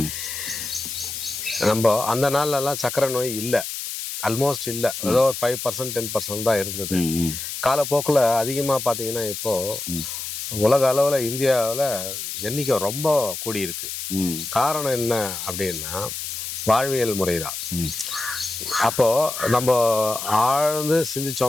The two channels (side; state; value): left; noise; hiss, 6 dB below the sound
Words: நம்ம அந்த நாள்லலாம் சக்கரை நோய் இல்லை, ஆல்மோஸ்ட் இல்லை. ஏதோ ஒரு 5% 10% தான் இருந்தது. காலப்போக்கில் அதிகமாக பார்த்தீங்கன்னா இப்போது உலக அளவில் இந்தியாவில் எண்ணிக்கை ரொம்ப கூடியிருக்கு. காரணம் என்ன அப்படின்னா வாழ்வியல் முறை தான். அப்போது நம்ம ஆழ்ந்து